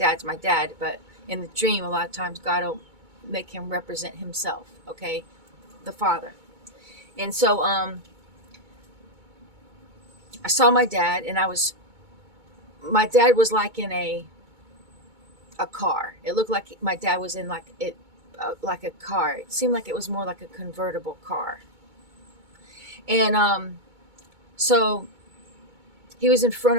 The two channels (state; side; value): late; left; 2.2 ms